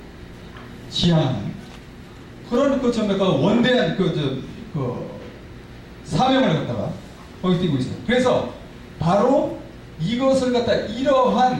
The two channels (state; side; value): identical; both; correlation 1.00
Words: 지향하는 그런 그 원대한 그 사명을 갖다가 거기 띄고 있어요. 그래서 바로 이것을 갖다